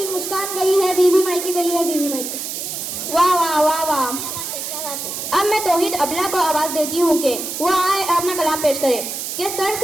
मुस्कान गई है, बीवी मायके गई है, बीवी मायके। वाह वाह वाह वाह। क्या बात है, क्या बात है। अब मैं तौहीद अबला को आवाज देती हूँ कि वो आए अपना कलाम पेश करे। कि सर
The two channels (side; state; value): right; noise; hiss, 5 dB below the sound